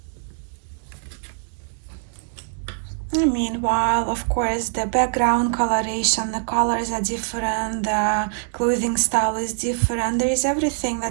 Meanwhile, of course, the background coloration, the colors are different, the clothing style is different. There is everything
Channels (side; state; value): left; silent; digital silence